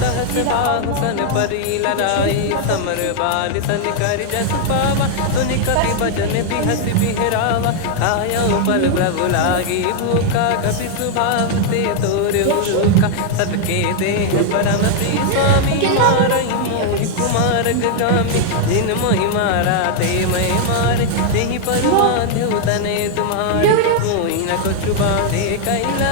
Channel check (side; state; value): both; different; correlation 0.00